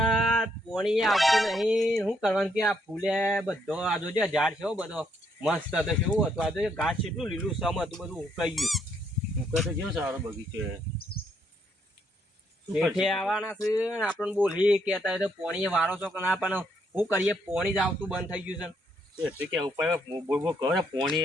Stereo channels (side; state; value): both; normal; correlation 0.73